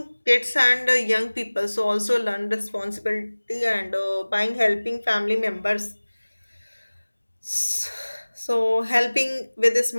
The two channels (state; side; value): inverted; both; correlation -1.00